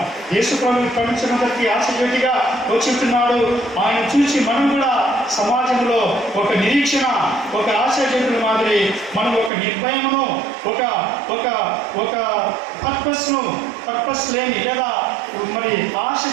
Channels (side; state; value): left; drops out; at 9.5 s